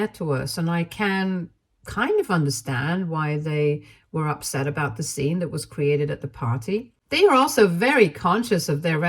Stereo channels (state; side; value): identical; both; correlation 1.00